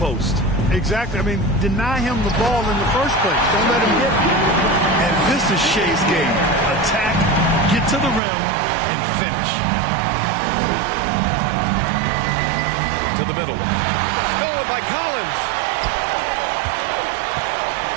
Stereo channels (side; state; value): left; drops out; at 8.2 s